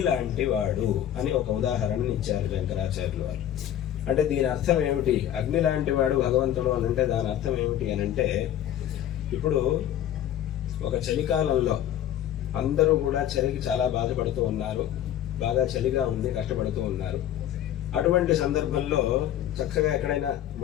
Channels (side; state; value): right; quieter; 11.3 dB